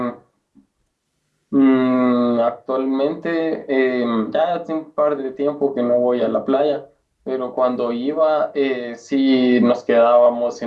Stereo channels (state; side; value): identical; both; correlation 1.00